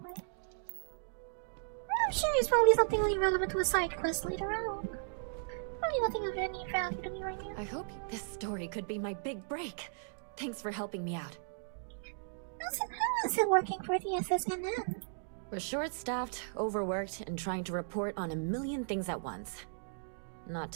I'm sure it's probably something really relevant to a side quest later on. Probably nothing of any value to me right now. I hope this story could be my big break. Thanks for helping me out. How is it working for the SSNN? We're short-staffed, overworked, and trying to report on a million things at once. Not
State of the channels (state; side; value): silent; left; digital silence